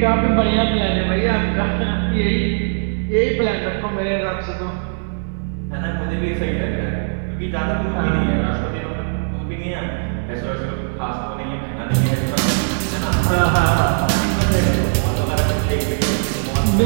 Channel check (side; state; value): left; silent; digital silence